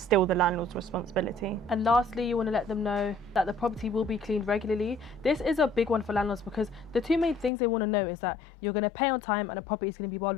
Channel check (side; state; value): right; drops out; at 7.5 s